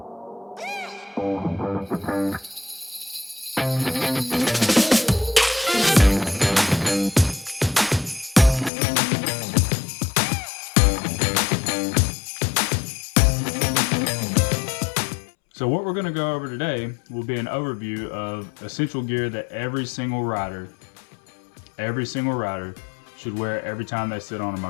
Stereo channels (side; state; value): right; drops out; at 8.7 s